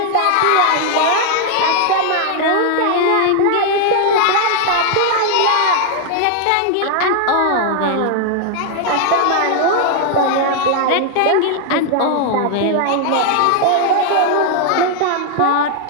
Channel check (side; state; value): both; different; correlation 0.00